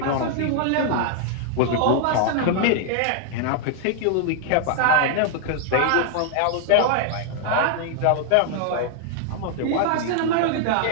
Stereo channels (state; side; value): different; both; correlation 0.00